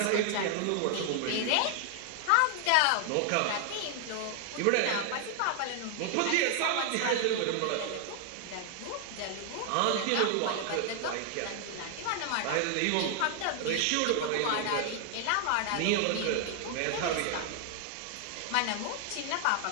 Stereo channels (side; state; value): both; different; correlation 0.00